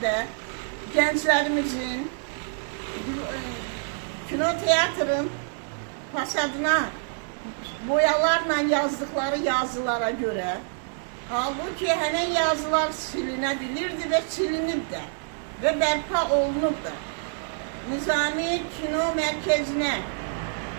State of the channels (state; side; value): silent; left; 60 dB below the other